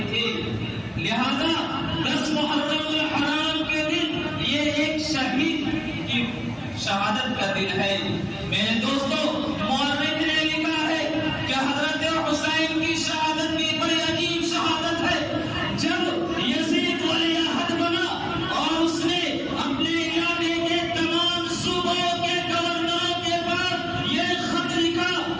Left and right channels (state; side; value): identical; both; correlation 1.00